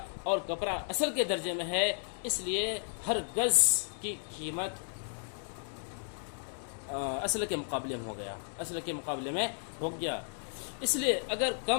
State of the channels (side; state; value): right; silent; 55 dB below the other